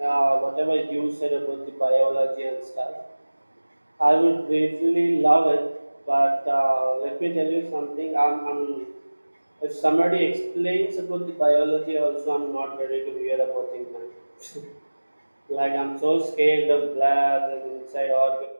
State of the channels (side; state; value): both; inverted; correlation -1.00